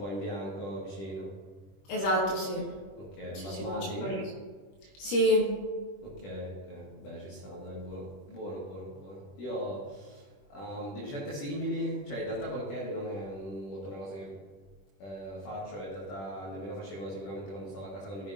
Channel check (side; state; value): right; late; 21 ms